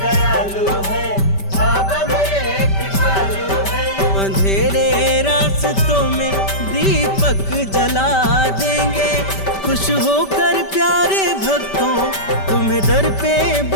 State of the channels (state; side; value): late; right; 5.1 ms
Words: है, बाबा मेरे कृपालु है। अंधेरे रास्तों में दीपक जला देंगे। खुश होकर प्यारे भक्तों तुम्हें दर पे